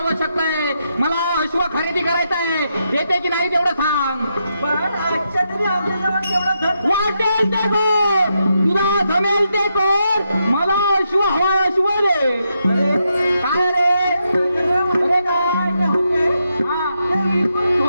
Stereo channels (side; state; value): both; inverted; correlation -0.82